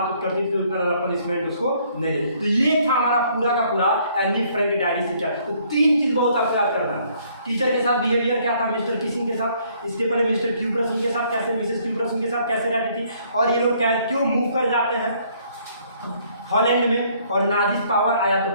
करती थी उतना ज़्यादा पनिशमेंट उसको नहीं देते। तो ये था हमारा पूरा का पूरा एनी फ्रैंक डायरी से क्या। तो 3 चीज़ बहुत आपको याद करना है। टीचर के साथ बिहेवियर क्या था मिस्टर किसिंग के साथ, इसके पहले मिस्टर क्यूप्रस उनके साथ कैसे, मिसेस क्यूप्रस उनके साथ कैसे रहती थी, और ये लोग क्यों मूव कर जाते हैं हॉलैंड में, और नाजिस पावर आया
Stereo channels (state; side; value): inverted; both; correlation -0.64